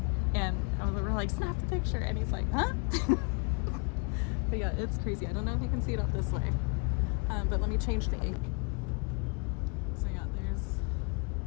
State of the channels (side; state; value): right; quieter; 34.4 dB